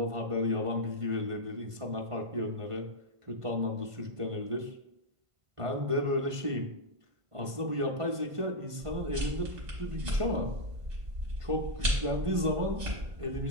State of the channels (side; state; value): left; late; 1.5 ms